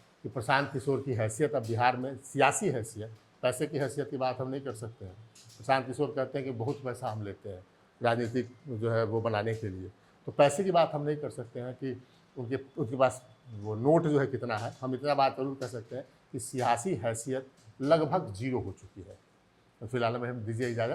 कि प्रशांत किशोर की हैसियत अब बिहार में सियासी हैसियत, पैसे की हैसियत की बात हम नहीं कर सकते हैं। प्रशांत किशोर कहते हैं कि बहुत पैसा हम लेते हैं राजनीतिक जो है वो बनाने के लिए, तो पैसे की बात हम नहीं कर सकते हैं कि उनके पास वो नोट जो है कितना है। हम इतना बात जरूर कह सकते हैं कि सियासी हैसियत लगभग 0 हो चुकी है। तो फिलहाल में हम दीजिए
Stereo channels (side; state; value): both; identical; correlation 1.00